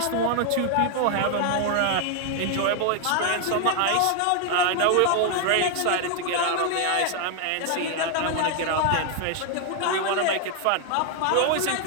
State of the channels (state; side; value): different; both; correlation 0.00